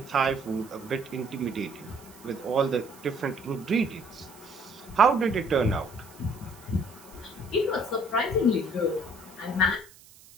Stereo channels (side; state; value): right; noise; hiss, 23 dB below the sound